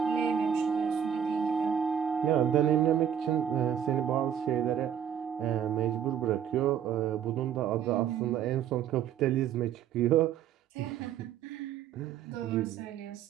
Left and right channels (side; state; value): left; quieter; 9.0 dB